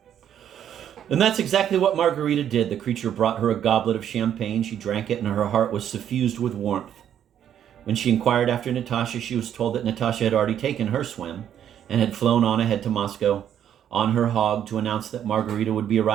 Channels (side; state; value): left; quieter; 9.8 dB